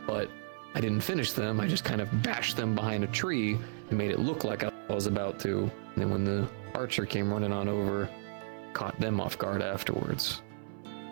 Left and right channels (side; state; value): left; silent; 56 dB below the other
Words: But I didn't finish them, I just kind of bashed them behind a tree and made it look like I was about to. And then when the archer came running on over, caught them off guard afterwards.